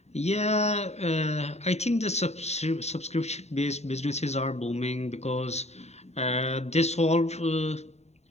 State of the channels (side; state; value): right; late; 0.32 ms